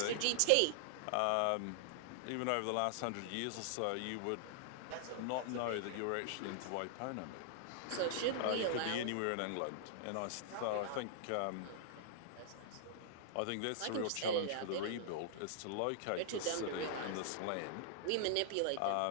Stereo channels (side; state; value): both; different; correlation -0.01